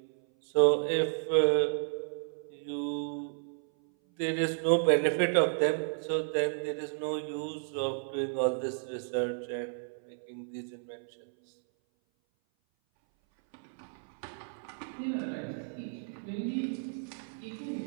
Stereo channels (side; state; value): left; silent; 56 dB below the other